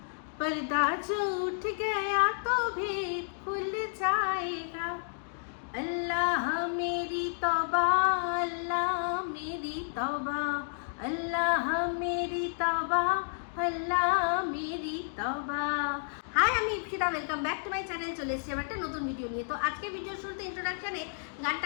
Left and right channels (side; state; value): right; silent; digital silence